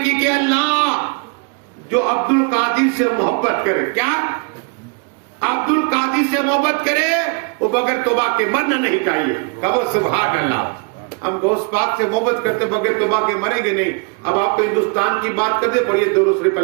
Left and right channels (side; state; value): left; quieter; 34.4 dB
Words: کہ اللہ جو عبد القادر سے محبت کرے، کیا عبد القادر سے محبت کرے وہ بغیر توبہ کے مرنا نہیں چاہیے۔ کہو سبحان اللہ۔ ہم غوث پاک سے محبت کرتے بغیر توبہ کے مریں گے نہیں۔ اب آپ کو ہندوستان کی بات کرتے، پڑھیے درود شریف،